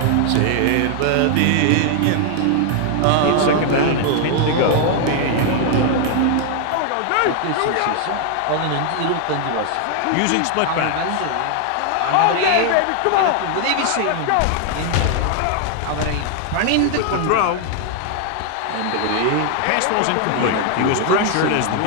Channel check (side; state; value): both; different; correlation 0.00